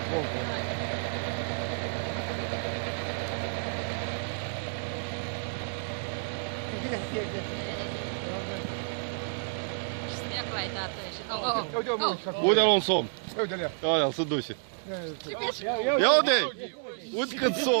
pompa. Снег лай дată și... Uite-l un somn. Uite-le. Aia, se duce. Ia uite! Uite cât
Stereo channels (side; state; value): left; silent; digital silence